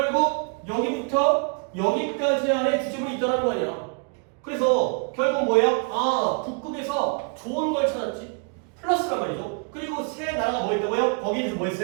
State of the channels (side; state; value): left; quieter; 39.1 dB